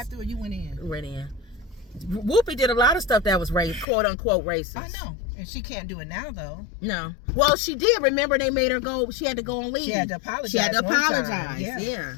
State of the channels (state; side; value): drops out; right; at 3.9 s